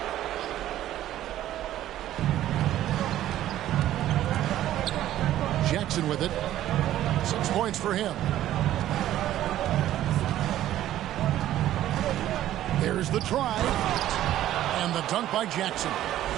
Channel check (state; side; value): quieter; left; 13.0 dB